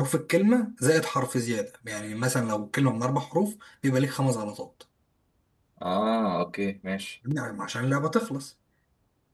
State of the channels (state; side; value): identical; both; correlation 1.00